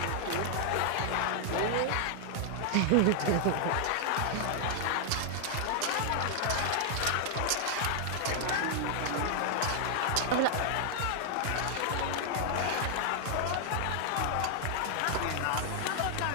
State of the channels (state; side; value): different; both; correlation 0.00